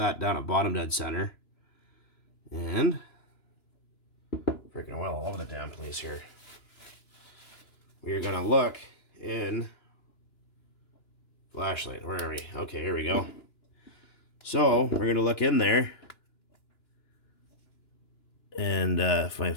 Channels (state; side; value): late; right; 2.9 ms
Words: down at bottom dead center. And freaking oil all over the damn place here. We're going to look in flashlight. Where are we? Okay, here we go. So we're going to look in there. And if my